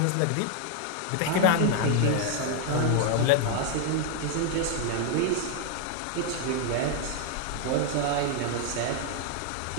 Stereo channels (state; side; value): different; both; correlation 0.00